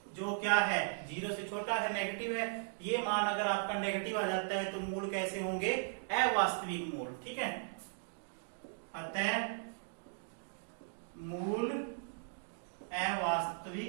जो क्या है 0 से छोटा है, नेगेटिव है। ये मान अगर आपका नेगेटिव आ जाता है तो मूल कैसे होंगे, अवास्तविक मूल, ठीक है। अतः मूल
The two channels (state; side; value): silent; left; digital silence